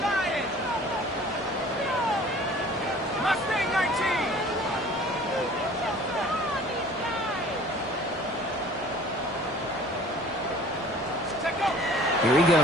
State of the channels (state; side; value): normal; both; correlation 0.48